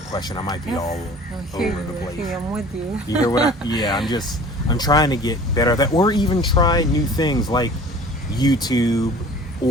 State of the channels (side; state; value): both; normal; correlation 0.45